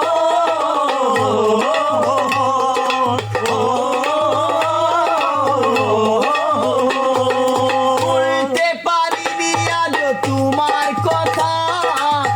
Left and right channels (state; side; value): identical; both; correlation 1.00